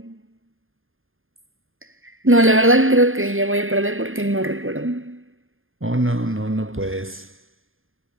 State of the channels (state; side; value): late; left; 0.60 ms